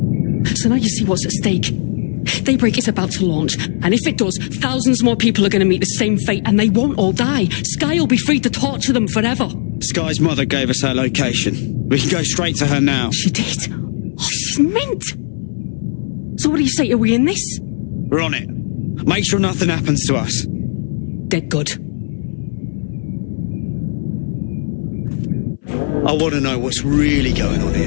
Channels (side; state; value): right; silent; 62 dB below the other